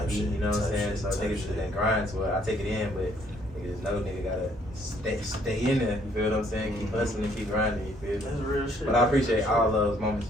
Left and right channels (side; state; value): both; normal; correlation 0.65